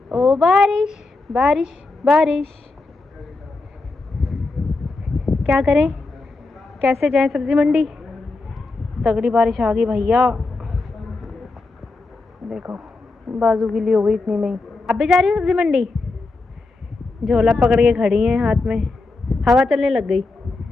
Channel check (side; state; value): right; quieter; 3.5 dB